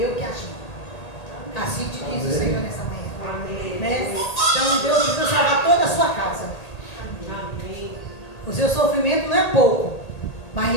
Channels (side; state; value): right; late; 1.8 ms